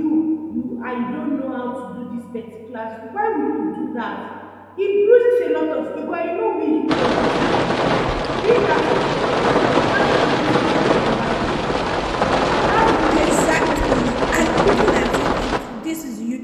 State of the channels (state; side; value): identical; both; correlation 1.00